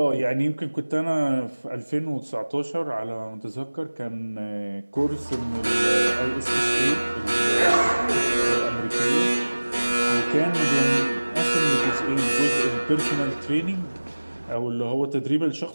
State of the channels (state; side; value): inverted; both; correlation -1.00